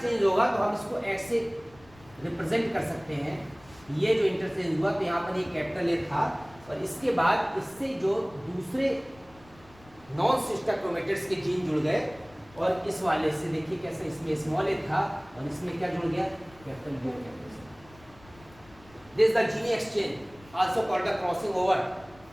होगा तो हम इसको एक्स से रिप्रेजेंट कर सकते हैं। ये जो इंटरचेंज हुआ तो यहाँ पर ये कैपिटल ए था और इसके बाद इससे जो दूसरे नॉन सिस्टर क्रोमेटिड्स के जीन जुड़ गए और इस वाले से देखिए कैसे इसमें स्मॉल ए था और इसमें क्या जुड़ गया, कैपिटल बी और capital C. This is the gene exchange also called the crossing over.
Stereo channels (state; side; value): noise; left; rumble, 25 dB below the sound